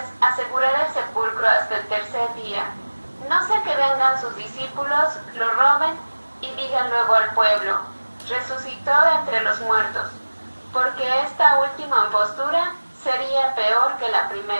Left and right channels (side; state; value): both; inverted; correlation -1.00